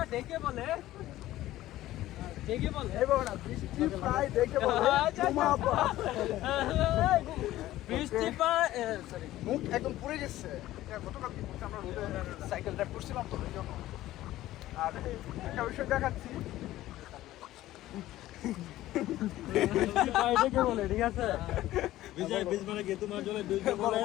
ডেকে বলে এইভাবে না, বৃষ্টি প্রায় দেখে বলে জুমাপা। বৃষ্টি সরি মুখ একদম পুড়ে গেছে। এটা গতকাল কি করছে, আমরা রোডে সাইকেল ড্রাইভ করছিলাম তো এই জন্য। আর একটা বিষয় দেখাচ্ছি, ডেকে বলে, ঠিক আছে? বিজয় বীজ মানে কি তোমার জন্য বীজ বলে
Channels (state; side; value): quieter; right; 15.2 dB